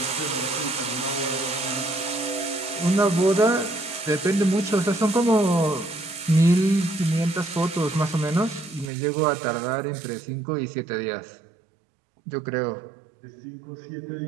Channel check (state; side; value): drops out; left; at 8.9 s